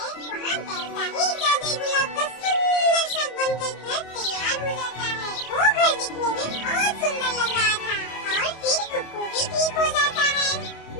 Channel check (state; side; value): late; right; 27 ms